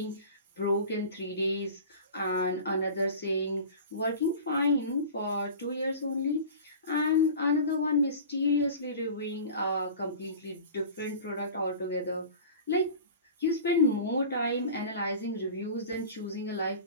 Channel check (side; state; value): both; inverted; correlation -0.37